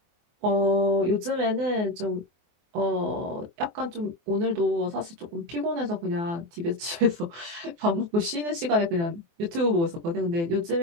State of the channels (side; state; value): left; late; 24 ms